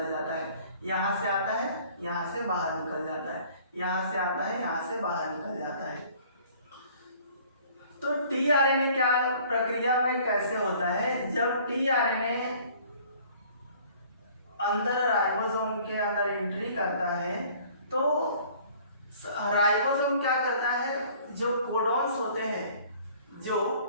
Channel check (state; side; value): inverted; both; correlation -0.54